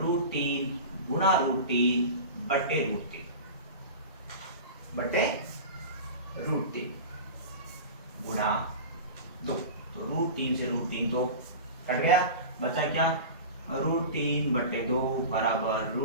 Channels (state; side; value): inverted; both; correlation -0.31